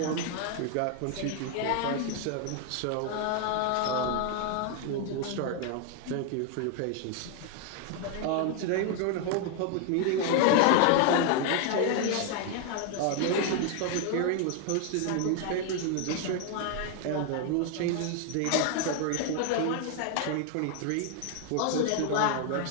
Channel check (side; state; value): both; different; correlation 0.01